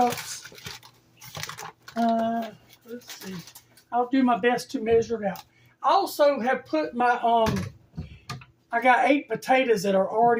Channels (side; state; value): both; identical; correlation 1.00